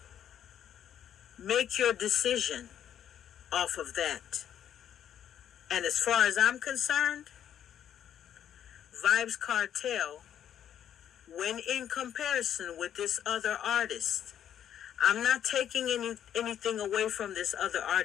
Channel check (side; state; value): right; quieter; 9.9 dB